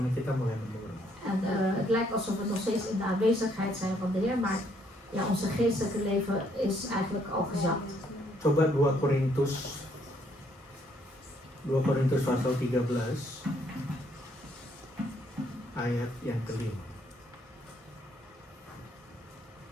kita mulai menurun. En het lijkt alsof we nog steeds in de aanwezigheid zijn van de Heer. Maar ja, onze geestelijke leven is eigenlijk al gezakt. Coba 2 Korintus pasal 13 ayat yang kelima.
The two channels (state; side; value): normal; both; correlation 0.69